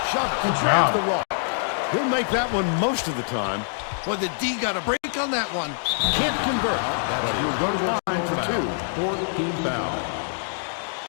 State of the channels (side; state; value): right; silent; digital silence